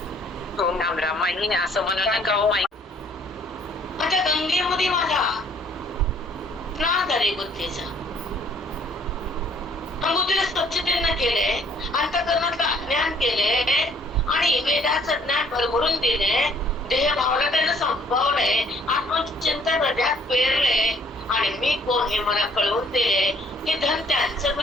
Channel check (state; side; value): normal; both; correlation 0.60